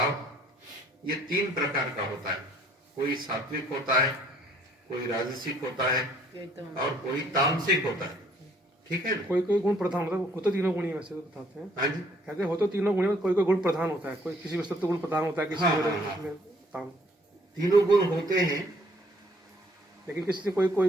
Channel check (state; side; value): normal; both; correlation 0.62